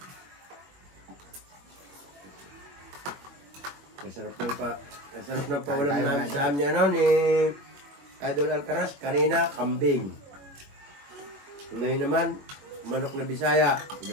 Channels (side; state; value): left; late; 21 ms